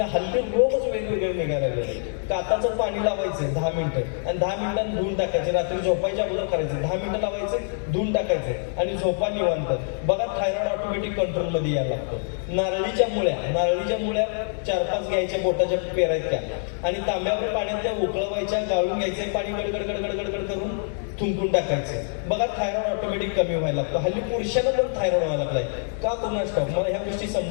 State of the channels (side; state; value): right; silent; 62 dB below the other